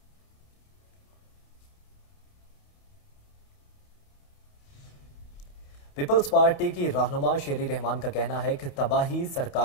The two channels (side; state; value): right; late; 30 ms